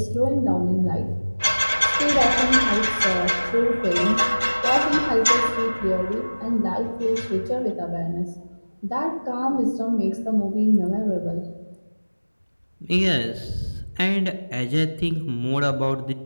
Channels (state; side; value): inverted; both; correlation -1.00